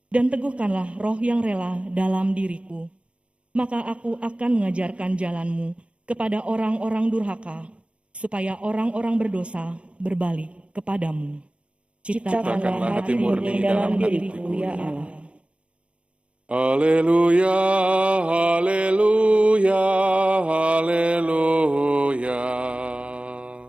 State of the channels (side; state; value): left; late; 0.060 ms